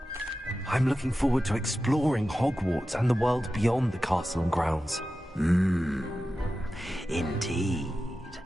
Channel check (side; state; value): both; normal; correlation 0.93